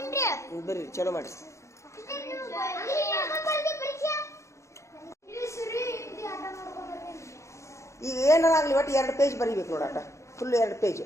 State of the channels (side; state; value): right; late; 0.14 ms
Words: ಬರ್ರಿ ಚಲೋ ಮಾಡಿ ಈಗ ಏನಾಗಲಿ ಒಟ್ಟು 2 ಪೇಜ್ ಬರೀಬೇಕು ನೋಡಾಟ ಫುಲ್ 2 ಪೇಜ್